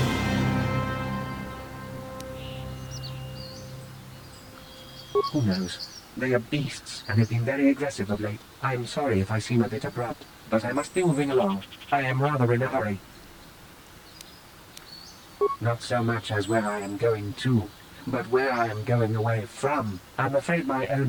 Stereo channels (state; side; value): identical; both; correlation 1.00